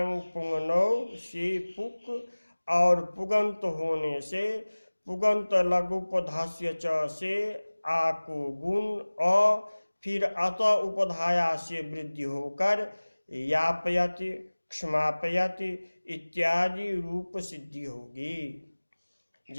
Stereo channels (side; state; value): both; inverted; correlation -1.00